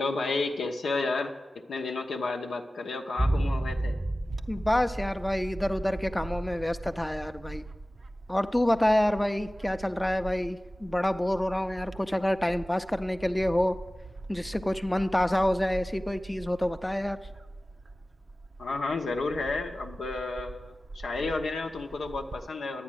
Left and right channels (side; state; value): both; normal; correlation 0.96